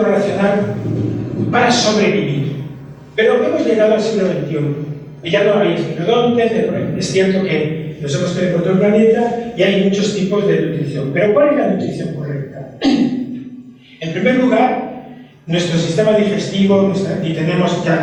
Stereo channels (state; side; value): identical; both; correlation 1.00